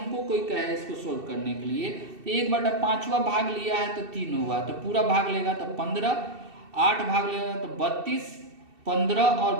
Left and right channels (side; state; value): left; late; 2.7 ms